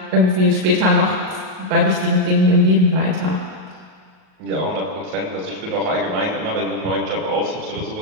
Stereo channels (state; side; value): late; left; 38 ms